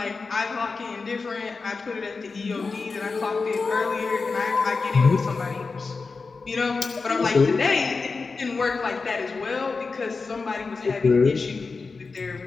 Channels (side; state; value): right; quieter; 4.3 dB